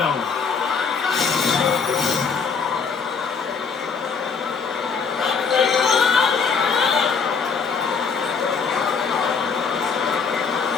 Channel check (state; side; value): quieter; right; 5.6 dB